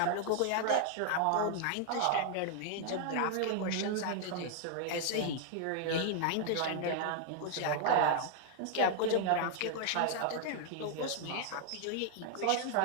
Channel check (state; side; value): different; both; correlation 0.00